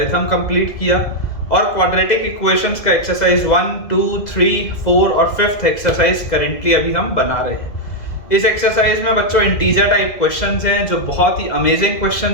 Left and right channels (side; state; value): right; late; 2.0 ms